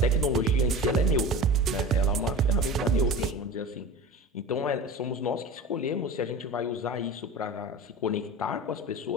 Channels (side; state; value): both; normal; correlation 0.33